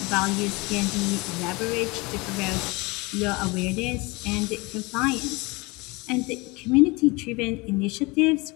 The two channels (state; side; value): quieter; right; 25.2 dB